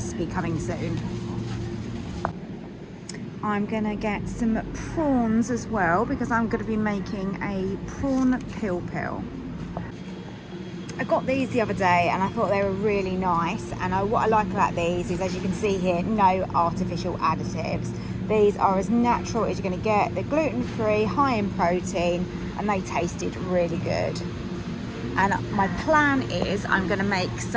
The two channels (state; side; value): identical; both; correlation 1.00